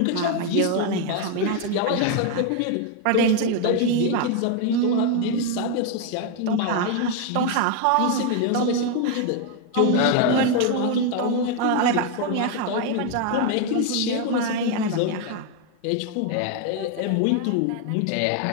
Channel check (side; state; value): both; different; correlation 0.01